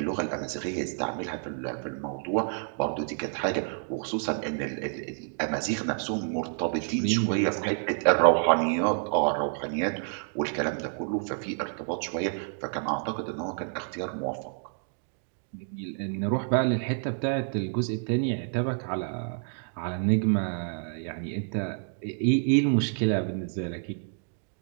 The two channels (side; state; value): left; silent; 59 dB below the other